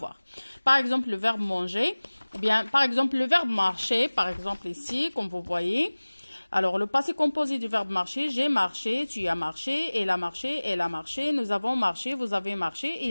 Par exemple, le verbe manger, ou bien par exemple le verbe marcher, par exemple ici, comme vous voyez. Alors, le passé composé du verbe marcher, j'ai marché, tu as marché, elle a marché, elle a marché, nous avons marché, vous avez marché,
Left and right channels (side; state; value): both; inverted; correlation -1.00